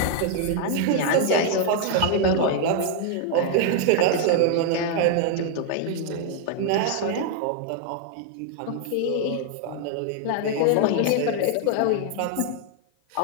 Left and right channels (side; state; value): both; different; correlation 0.00